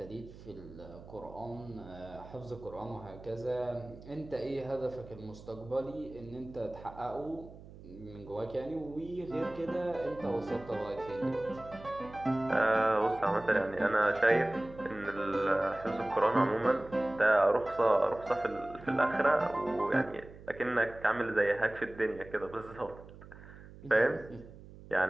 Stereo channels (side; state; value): right; noise; hum, 18 dB below the sound